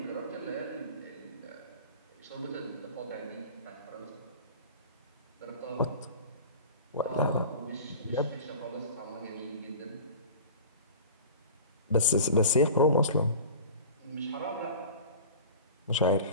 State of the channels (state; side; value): inverted; both; correlation -0.38